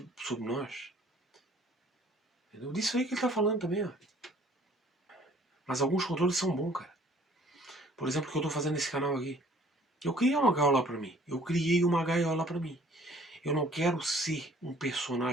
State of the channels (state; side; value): normal; both; correlation 0.56